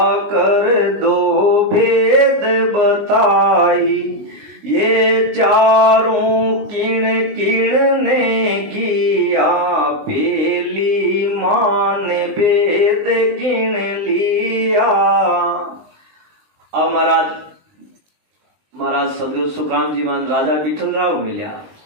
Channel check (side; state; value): left; late; 19 ms